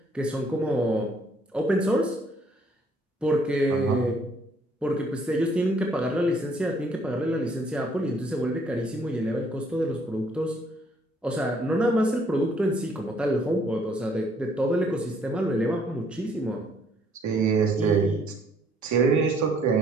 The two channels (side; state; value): both; normal; correlation 0.65